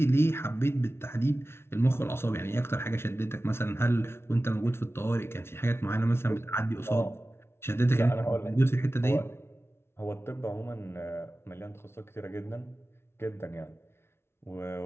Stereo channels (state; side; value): late; right; 0.12 ms